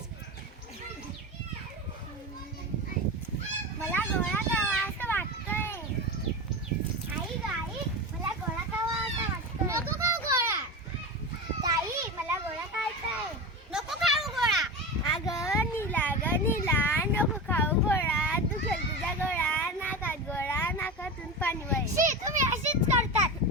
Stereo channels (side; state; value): both; normal; correlation 0.24